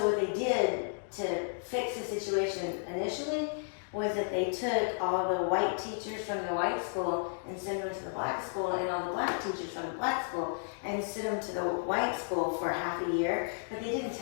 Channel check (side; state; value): right; silent; digital silence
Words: what they did to fix the situation initially was that they took all the white teachers from the white school and sent them to the black school, and all the black teachers from the black school and sent them to the white school for half a year, but they didn't